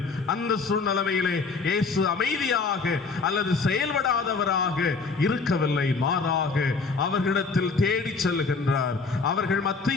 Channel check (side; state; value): right; quieter; 4.4 dB